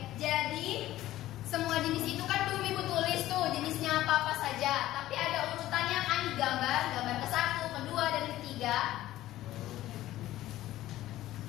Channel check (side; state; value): right; quieter; 14.8 dB